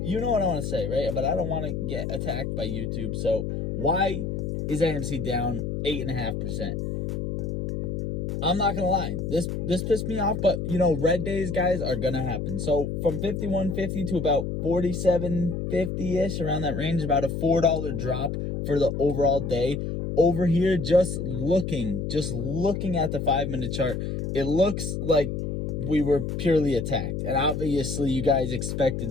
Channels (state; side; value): noise; left; hum, 3 dB below the sound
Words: You know what I want to say, right? But I don't want to get attacked by YouTube. So why is AMC down 8.5%? I'm not gonna lie, this pissed me off, but you know, red days, guys, are gonna happen. So from 51.50 to about 47.50ish, around that range, about a $4 drop for the overall day. Over here, just looking at the 5-minute chart, it looks like we were purely attacked, and obviously you guys expected